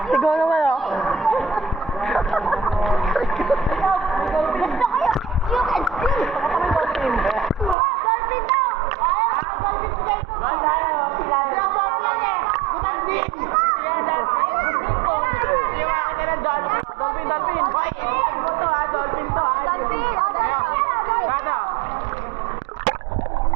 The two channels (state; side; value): drops out; left; at 7.8 s